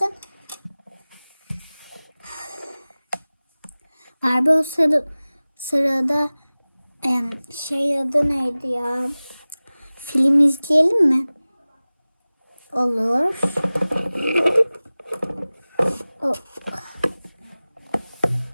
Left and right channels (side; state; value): both; inverted; correlation -0.98